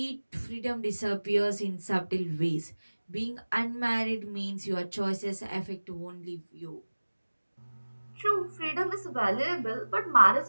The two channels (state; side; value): inverted; both; correlation -1.00